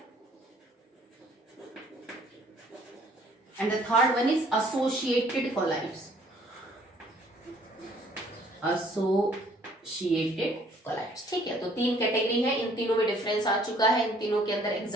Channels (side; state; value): both; normal; correlation 0.60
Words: and the third one is associated colloids. ठीक है, तो तीन कैटेगरी है, इन तीनों में डिफरेंस आ चुका है, इन तीनों के अंदर